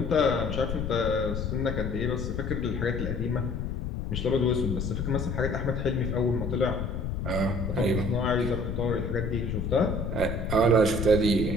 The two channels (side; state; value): left; noise; rumble, 3 dB below the sound